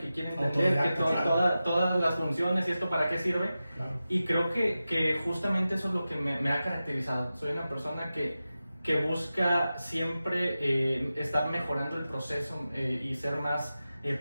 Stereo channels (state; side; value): inverted; both; correlation -0.94